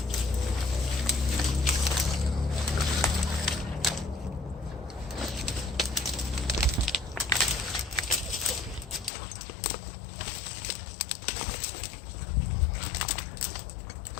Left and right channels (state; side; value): drops out; right; at 9.1 s